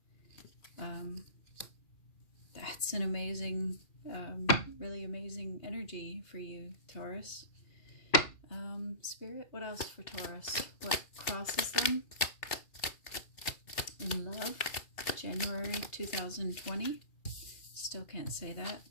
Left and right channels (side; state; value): right; late; 2.4 ms